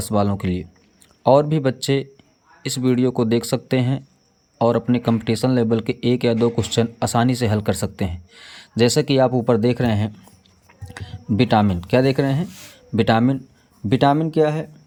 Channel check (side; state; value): both; identical; correlation 1.00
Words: वालों के लिए। और भी बच्चे इस वीडियो को देख सकते हैं और अपने कंपटीशन लेवल के 1 या 2 क्वेश्चन आसानी से हल कर सकते हैं। जैसा कि आप ऊपर देख रहे हैं, विटामिन क्या देख रहे हैं? विटामिन क्या है?